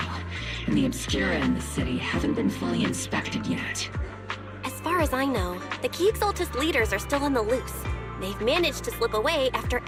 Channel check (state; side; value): identical; both; correlation 1.00